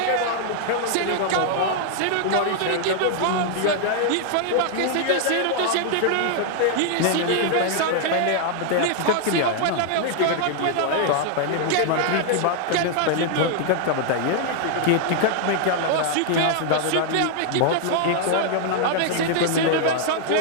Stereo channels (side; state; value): both; different; correlation 0.00